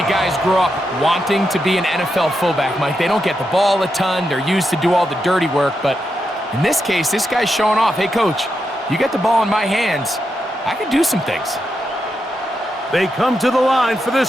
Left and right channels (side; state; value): both; normal; correlation 0.85